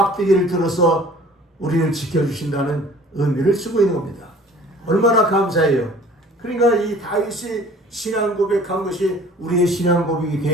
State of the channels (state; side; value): normal; both; correlation 0.49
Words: 들어서 우리를 지켜주신다는 의미를 쓰고 있는 겁니다. 얼마나 감사해요. 그러니까 이 다윗이 신앙 고백한 것이 우리의 신앙 고백이